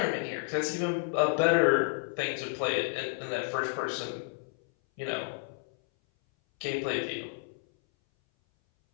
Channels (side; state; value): right; silent; 57 dB below the other